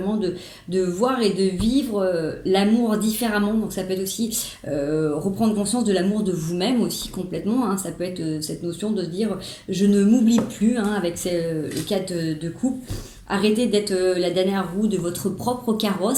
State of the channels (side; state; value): both; identical; correlation 1.00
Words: de voir et de vivre l'amour différemment. Donc ça peut être aussi reprendre conscience de l'amour de vous-même aussi complètement, hein. Ça peut être cette notion de se dire je ne m'oublie plus, hein, avec le cadre de couple. Arrêtez d'être la dernière roue de votre propre